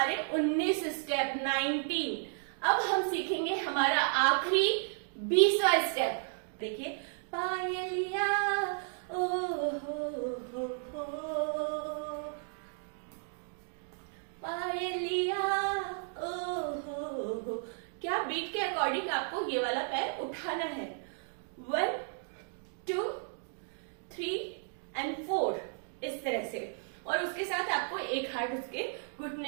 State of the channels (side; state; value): left; silent; 55 dB below the other